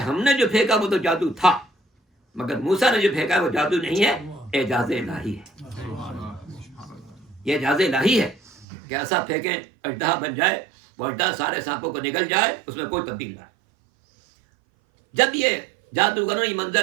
نے جو پھینکا وہ تو جادو تھا، مگر موسیٰ نے جو پھینکا وہ جادو نہیں ہے، اعجاز الہی ہے۔ یہ اعجاز الہی ہے کہ ایسا پھینکیں اژدہا بن جائے، وہ اژدہا سارے سانپوں کو نگل جائے، اس میں کوئی تبدیل نہ آئے۔ جب یہ جادوگروں نے یہ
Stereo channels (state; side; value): drops out; left; at 8.7 s